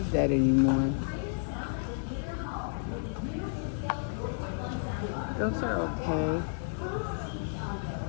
that anymore. Those are okay.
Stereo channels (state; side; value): silent; right; 57 dB below the other